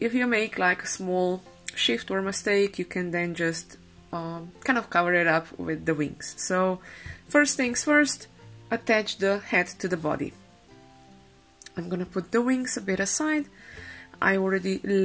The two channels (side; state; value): both; identical; correlation 1.00